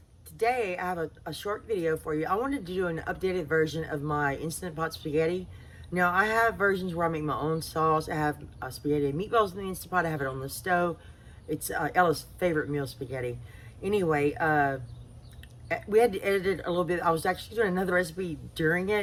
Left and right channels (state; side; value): identical; both; correlation 1.00